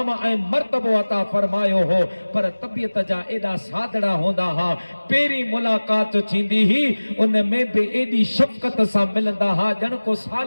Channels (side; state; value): both; inverted; correlation -1.00